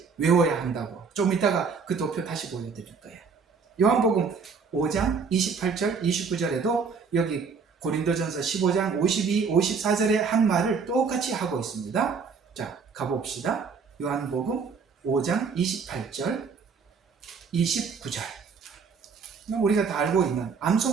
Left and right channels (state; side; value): quieter; left; 5.4 dB